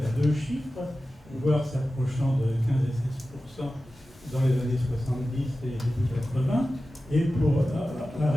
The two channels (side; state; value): both; normal; correlation 0.94